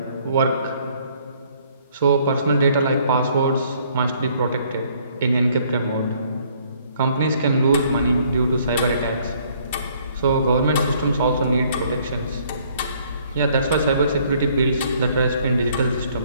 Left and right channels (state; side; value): inverted; both; correlation -0.63